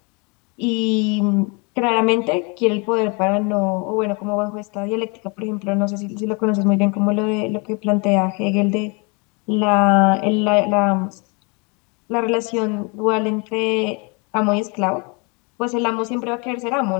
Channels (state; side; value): quieter; right; 31.6 dB